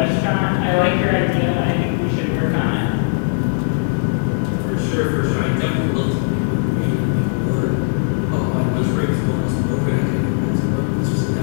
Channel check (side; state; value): right; silent; digital silence